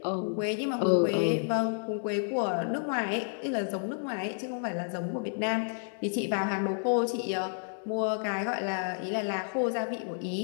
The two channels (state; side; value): silent; right; digital silence